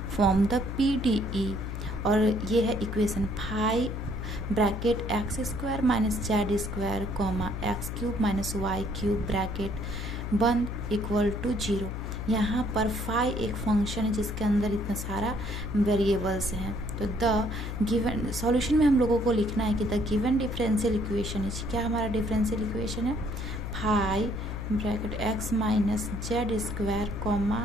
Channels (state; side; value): noise; left; hum, 5 dB below the sound